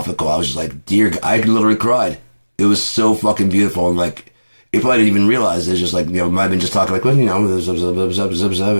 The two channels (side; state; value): both; inverted; correlation -1.00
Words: I was just like, I literally cried. It was so fucking beautiful, and it probably didn't even realize it's just might have been just talking